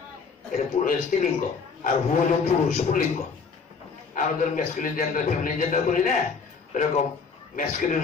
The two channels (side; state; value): right; quieter; 5.2 dB